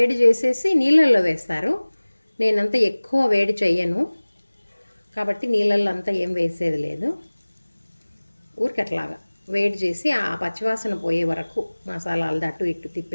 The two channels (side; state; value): both; inverted; correlation -1.00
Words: చేసేసి నీళ్ళల్లో వేస్తారు. నేనంతా ఎక్కువ వేడి చెయ్యను కాబట్టి నీళ్ళల్లో అంతా ఏం వేసేది లేదు. ఊరికి అట్లాగా వేడి చేసి ఆ పచ్చివాసన పోయే వరకు మసాలాలు అటు ఇటు